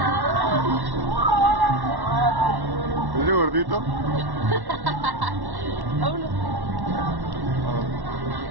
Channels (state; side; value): late; left; 1.1 ms